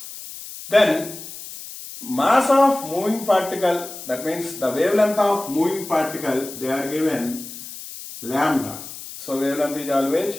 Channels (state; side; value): noise; left; hiss, 12 dB below the sound